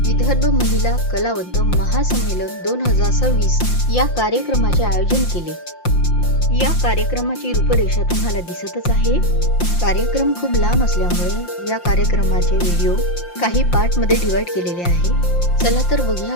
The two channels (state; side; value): late; right; 5.8 ms